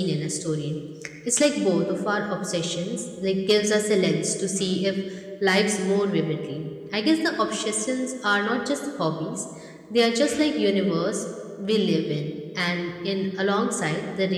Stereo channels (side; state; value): both; identical; correlation 1.00